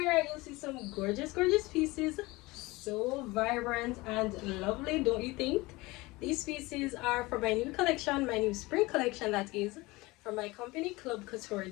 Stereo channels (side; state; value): right; quieter; 21.9 dB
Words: you'll see some gorgeous pieces, so vibrant and lovely, don't you think? These pieces are from my new collection, my new spring collection, that is from my company CLUB COUTURE